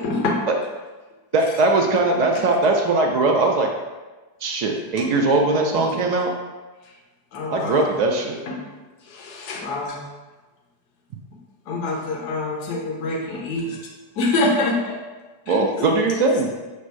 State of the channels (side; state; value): right; late; 4.8 ms